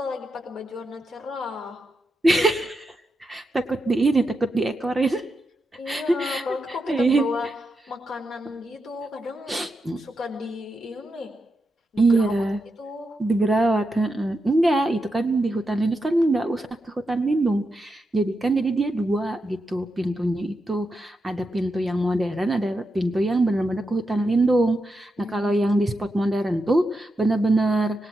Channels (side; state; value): both; normal; correlation 0.86